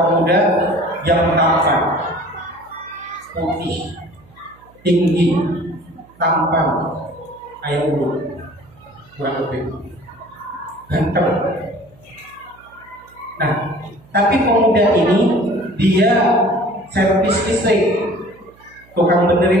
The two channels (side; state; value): right; noise; hum, 28 dB below the sound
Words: pemuda yang tampan, putih, tinggi, tampan, kayak ulu, kurang lebih ganteng. Nah, tapi pemuda ini dia servis listrik, tukang